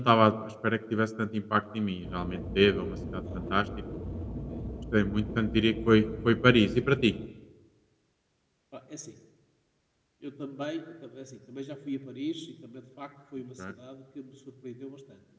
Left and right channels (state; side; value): identical; both; correlation 1.00